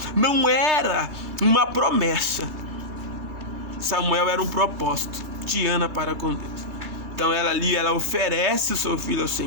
não era uma promessa. Samuel era um propósito de Ana para com Deus. Então ela oferece o seu filho ao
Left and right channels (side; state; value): left; late; 2.3 ms